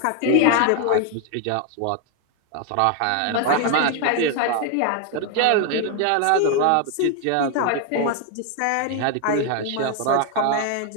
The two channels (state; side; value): different; both; correlation 0.01